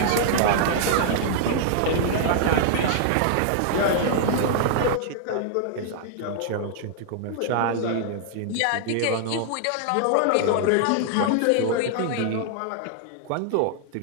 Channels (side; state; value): both; different; correlation -0.01